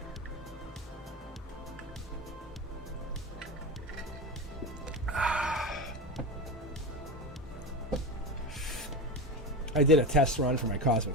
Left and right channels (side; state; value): both; normal; correlation 0.22